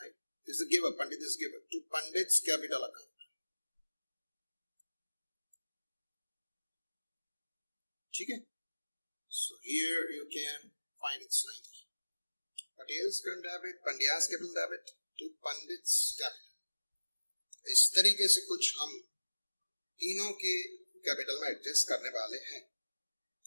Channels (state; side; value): inverted; both; correlation -1.00